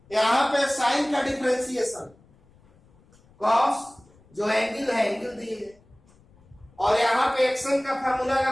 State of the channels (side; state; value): left; noise; rumble, 30 dB below the sound